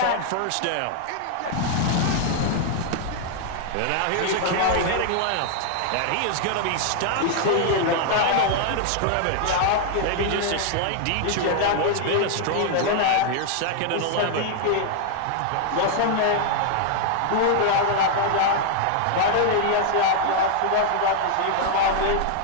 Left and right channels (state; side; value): different; both; correlation 0.00